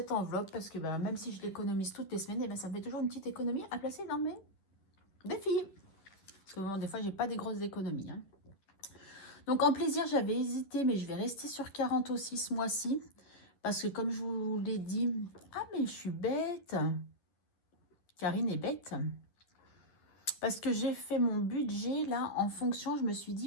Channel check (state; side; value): late; right; 11 ms